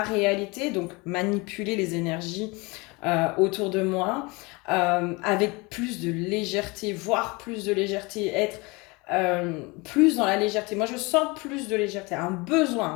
réalité, donc manipuler les énergies autour de moi, avec plus de légèreté, voire plus de légèreté, être plus dans la légèreté. Moi, je sens plus de légèreté, un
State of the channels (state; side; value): quieter; right; 26.0 dB